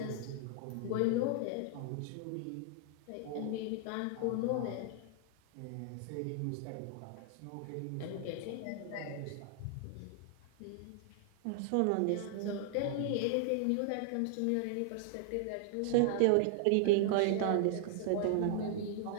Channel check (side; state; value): both; different; correlation -0.01